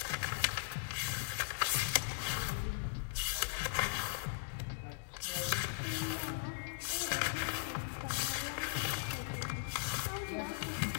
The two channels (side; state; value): right; silent; digital silence